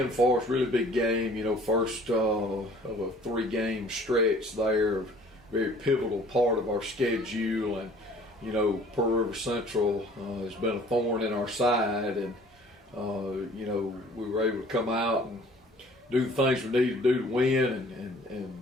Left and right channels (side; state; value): both; normal; correlation 0.53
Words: for us. Really big game. First of a 3-game stretch there, very pivotal part of our schedule, and Pearl River Central has been a thorn in our side, and we were able to come out and do the things we need to do to win